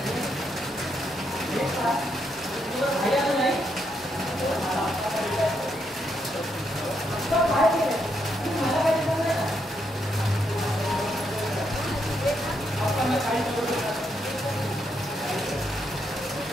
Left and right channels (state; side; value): normal; both; correlation 0.78